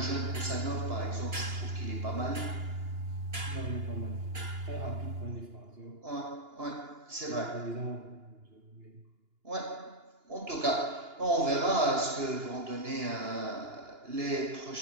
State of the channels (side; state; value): left; late; 2.9 ms